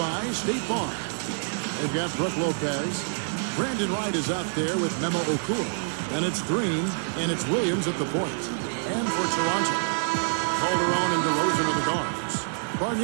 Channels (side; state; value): left; silent; digital silence